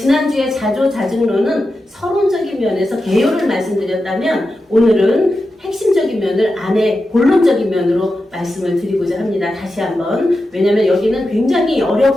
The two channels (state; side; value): normal; both; correlation 0.91